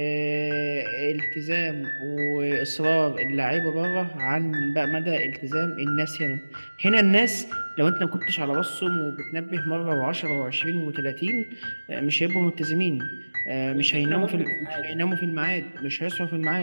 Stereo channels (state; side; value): inverted; both; correlation -1.00